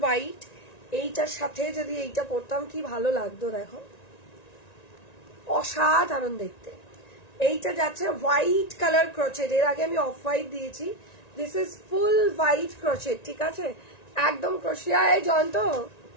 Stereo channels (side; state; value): right; late; 1.9 ms